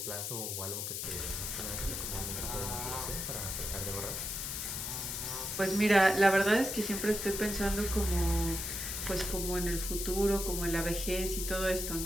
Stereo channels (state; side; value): noise; left; hiss, 3 dB below the sound